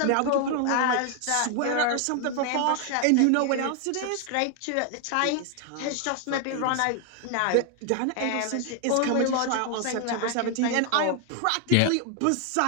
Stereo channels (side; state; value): both; different; correlation 0.00